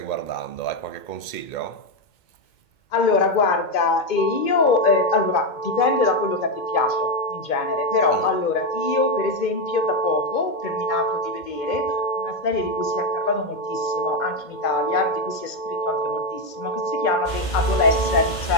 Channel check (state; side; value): late; right; 2.2 ms